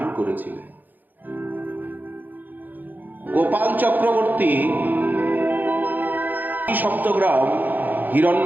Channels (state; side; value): late; left; 0.086 ms